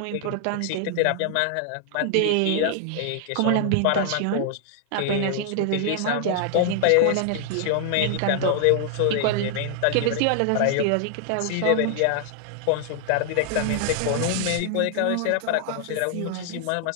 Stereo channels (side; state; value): both; different; correlation 0.00